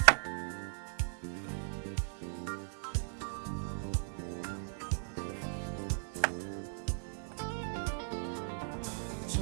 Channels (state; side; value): silent; left; 53 dB below the other